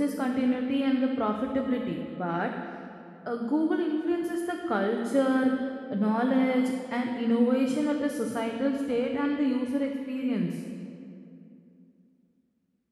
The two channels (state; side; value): identical; both; correlation 1.00